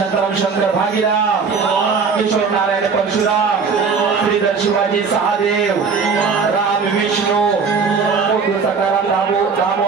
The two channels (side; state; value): left; quieter; 5.3 dB